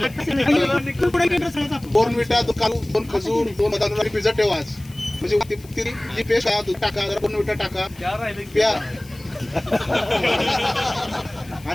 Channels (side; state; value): left; noise; hiss, 23 dB below the sound